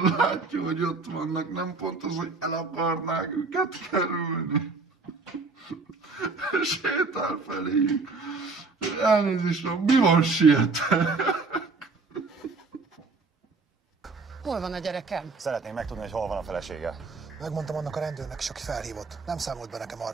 látja, hogy ott vannak, nem pont az, hogy el akarnák őket kerülni. Sétál feléjük. Elnézést, mi van, sietek? Hol van a gyerekem? Szeretném megtudni, hogy hol van a felesége. Megmondtam annak a rendőrnek is, aki felhívott. Nem számolt be nekem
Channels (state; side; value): quieter; left; 4.0 dB